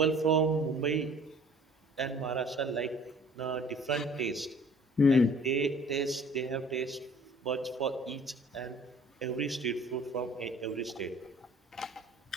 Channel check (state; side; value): normal; both; correlation 0.52